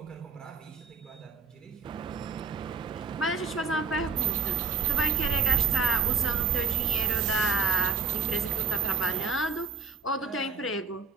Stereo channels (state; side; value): quieter; left; 5.2 dB